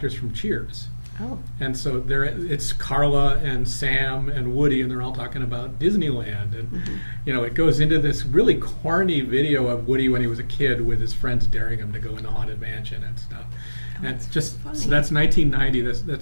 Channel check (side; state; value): both; inverted; correlation -1.00